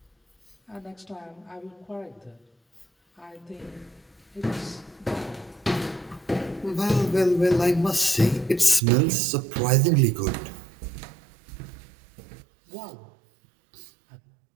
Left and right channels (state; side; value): drops out; left; at 8.8 s